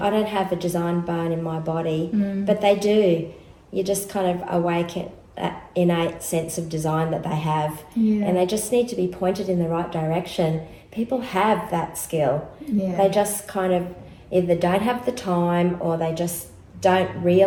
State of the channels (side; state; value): both; identical; correlation 1.00